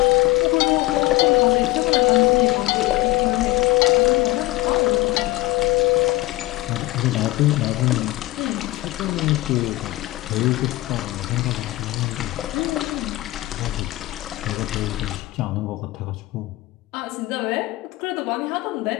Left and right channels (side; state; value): right; quieter; 19.3 dB